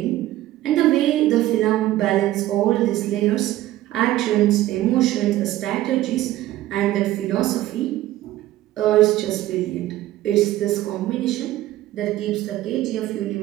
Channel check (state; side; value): quieter; left; 14.9 dB